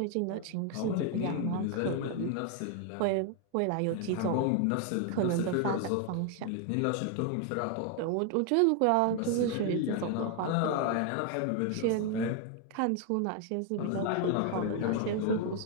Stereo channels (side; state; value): both; different; correlation 0.00